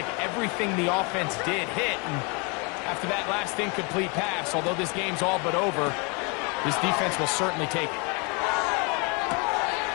everything the offense did hit. And after that last incomplete pass, although this game's all but over, this defense will certainly take it.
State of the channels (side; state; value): right; quieter; 31.4 dB